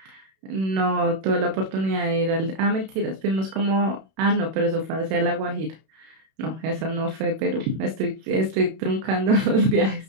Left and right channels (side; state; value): left; late; 31 ms